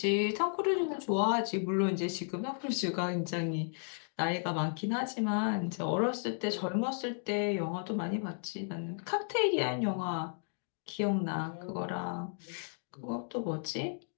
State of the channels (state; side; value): silent; right; digital silence